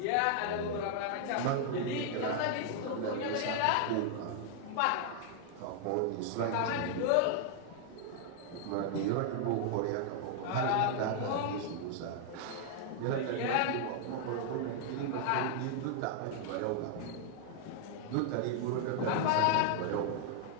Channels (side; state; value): both; different; correlation 0.00